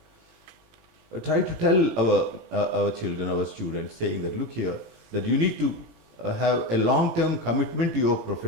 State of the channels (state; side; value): late; left; 18 ms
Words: Try to tell our children, our students, saying that look here, that you need to have a long-term commitment to your